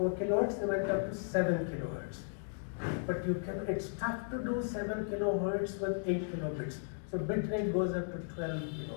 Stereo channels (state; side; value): silent; right; digital silence